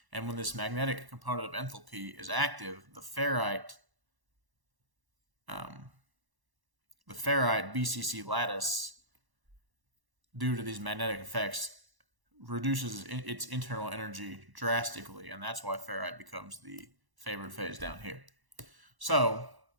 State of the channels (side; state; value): left; late; 1.1 ms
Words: And when this magnetic component of enthalpy is active, the ferrite BCC lattice, due to these magnetic effects, reduces its internal energy drastically, and that's why ferrite becomes the favored phase down here. So,